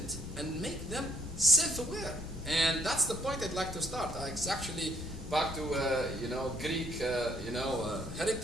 and make them self-aware. And that's the point I'd like to start. It's actually back to Greek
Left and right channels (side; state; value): both; normal; correlation 0.65